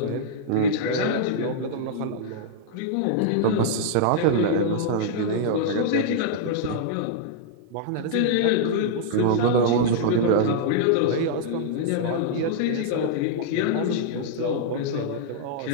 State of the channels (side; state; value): both; different; correlation -0.01